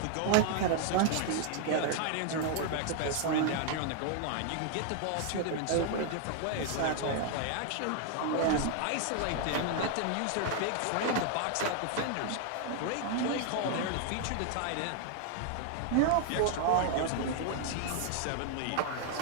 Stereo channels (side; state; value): both; different; correlation 0.00